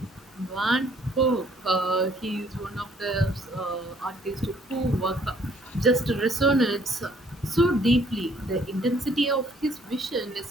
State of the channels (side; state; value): both; normal; correlation 0.62